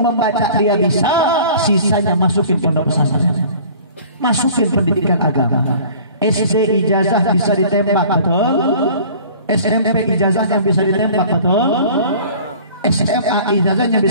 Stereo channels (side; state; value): both; inverted; correlation -0.47